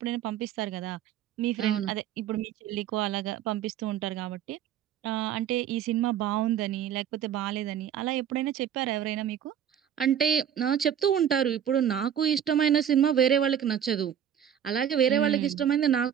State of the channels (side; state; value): left; quieter; 9.4 dB